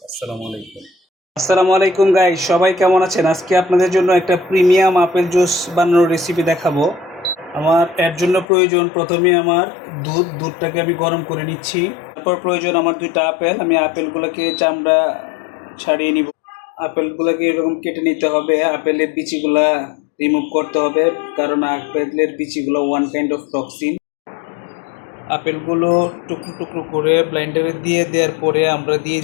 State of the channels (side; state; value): right; drops out; at 8.5 s